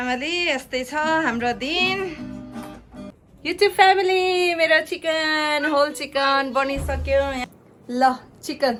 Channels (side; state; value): both; identical; correlation 1.00